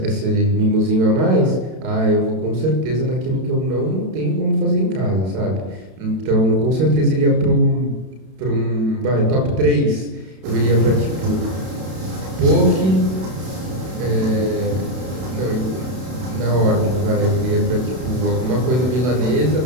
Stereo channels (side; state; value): left; late; 32 ms